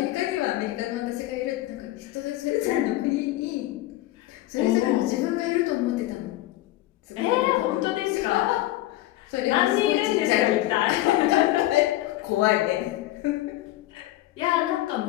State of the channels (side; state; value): right; quieter; 16.2 dB